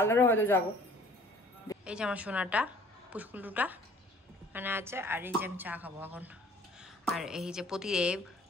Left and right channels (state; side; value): normal; both; correlation 0.54